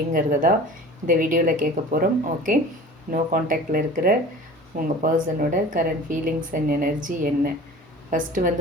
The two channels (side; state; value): both; normal; correlation 0.41